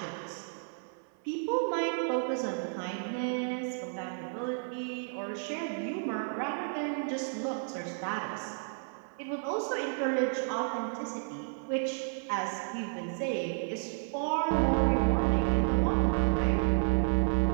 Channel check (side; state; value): left; silent; 57 dB below the other